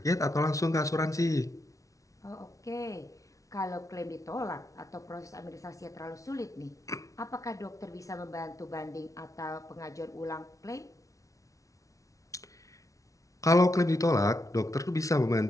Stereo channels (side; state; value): right; late; 0.16 ms